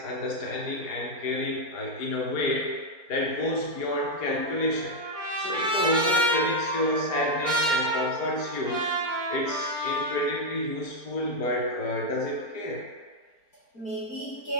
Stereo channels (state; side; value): late; right; 4.3 ms